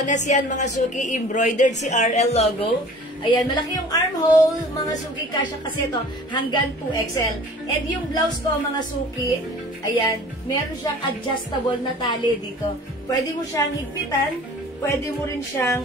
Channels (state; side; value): normal; both; correlation 0.46